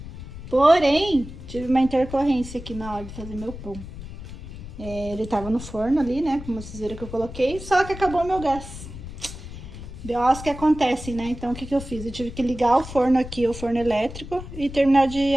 Porém, tive uma intercorrência aqui na hora de fazer meu pão. Ele tava no forno ali, né, como vocês viram que eu coloquei, só que acabou o meu gás. BOs que acontecem, né? Então, o que eu fiz? Eu tive que ligar o forno aqui, o forno elétrico, e terminar de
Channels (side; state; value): left; noise; rumble, 12 dB below the sound